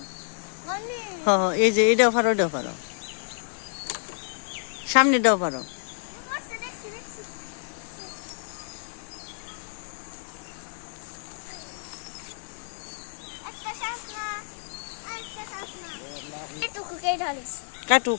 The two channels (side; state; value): right; silent; digital silence